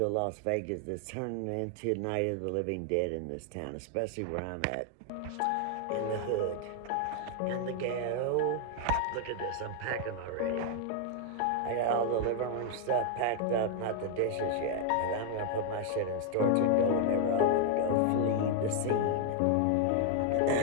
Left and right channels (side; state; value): both; different; correlation 0.00